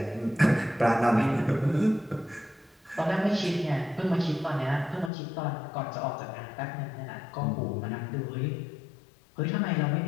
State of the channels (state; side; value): drops out; right; at 5.1 s